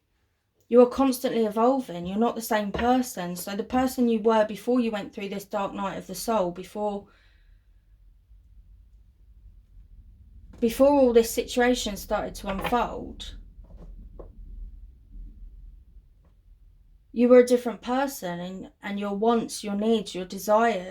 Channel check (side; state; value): both; identical; correlation 1.00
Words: You are constantly evolving. You're not the same person. So the person you were before you went through this dark night of the soul, before all this situation started to unfold, you were a different person, and your wants, your needs, your